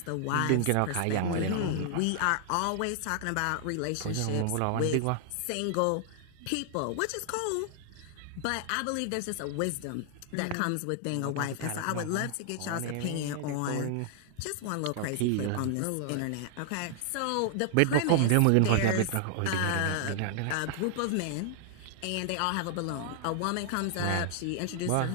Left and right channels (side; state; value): both; different; correlation 0.00